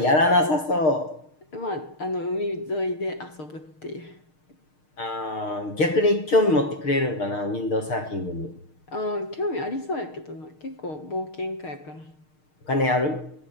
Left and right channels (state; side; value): late; right; 6.5 ms